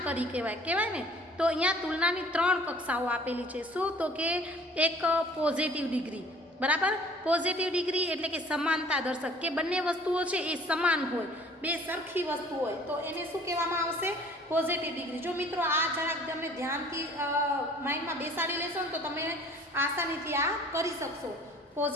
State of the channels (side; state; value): both; normal; correlation 0.51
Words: કરી કહેવાય ને. તો અહીંયા તુલનાની 3 કક્ષાઓ આપેલી છે. શું? તો કે એક પોઝિટિવ ડિગ્રી, બરાબર. પોઝિટિવ ડિગ્રી એટલે કે સમાનતા દર્શક, કે બંને વસ્તુઓ છે એ સમાન હોય, બે સરખી વસ્તુ હોય તો એને શું કહેવામાં આવશે? Positive degree. જો મિત્રો આ જરાક તમે ધ્યાનથી માઇન્ડમાં બેસાડી લેશો ને તો તમે આસાનીથી આ કરી શકશો.